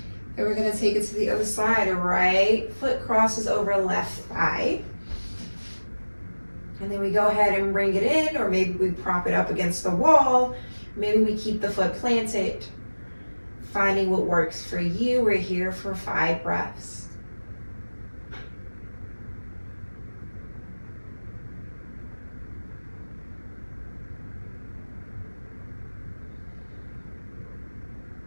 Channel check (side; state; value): both; inverted; correlation -1.00